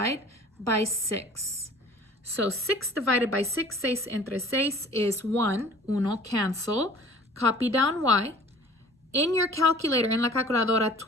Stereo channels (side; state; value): both; normal; correlation 0.48